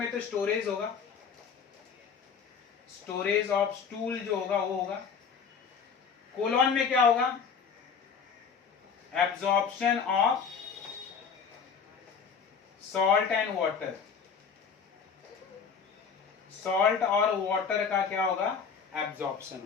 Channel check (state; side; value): quieter; right; 6.2 dB